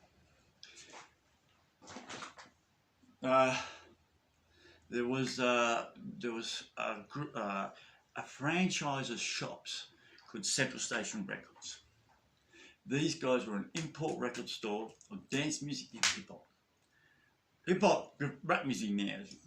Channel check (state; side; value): identical; both; correlation 1.00